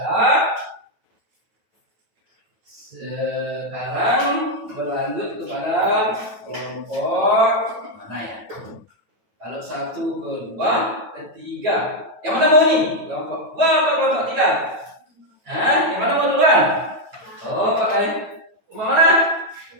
Sekarang berlanjut kepada kelompok mana ya? Kalau 1, 2, 3. Yang mana mau nih? Kelompok 2 apa kelompok 3? Yang mana mau duluan? Oh, pakai mana?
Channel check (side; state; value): left; late; 9.3 ms